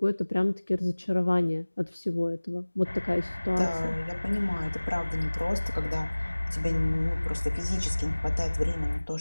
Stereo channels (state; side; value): inverted; both; correlation -1.00